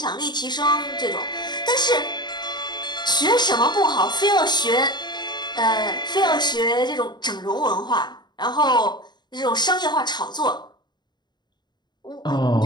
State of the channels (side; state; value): right; late; 0.21 ms